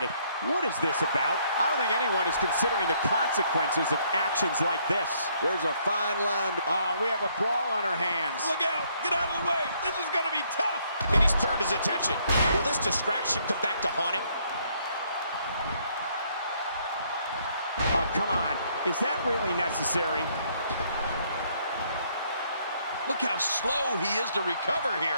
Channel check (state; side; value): inverted; both; correlation -0.68